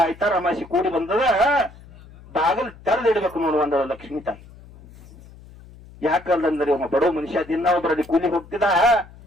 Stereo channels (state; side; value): noise; left; hum, 21 dB below the sound